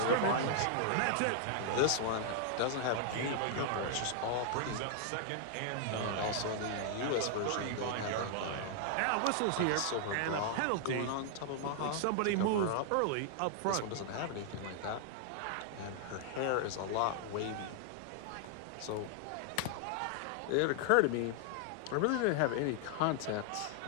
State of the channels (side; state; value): both; different; correlation -0.01